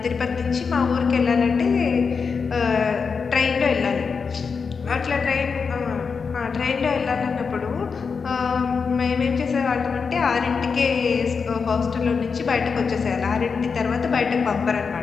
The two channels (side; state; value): right; quieter; 5.4 dB